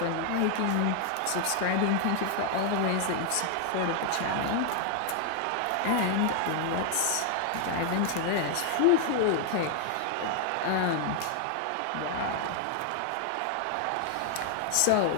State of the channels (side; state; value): both; different; correlation 0.00